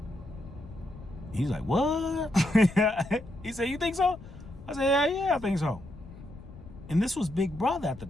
He's like, what? He said, you think so? I said, yeah, I think so. And this was Big Brother at the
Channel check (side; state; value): left; noise; rumble, 16 dB below the sound